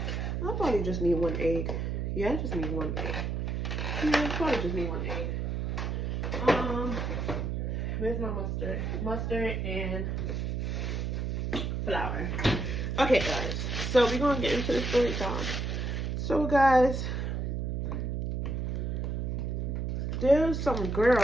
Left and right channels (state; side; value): noise; right; hum, 1 dB below the sound